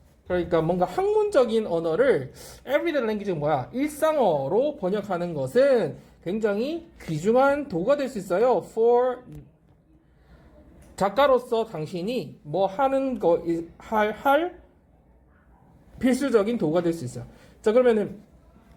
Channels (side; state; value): both; identical; correlation 1.00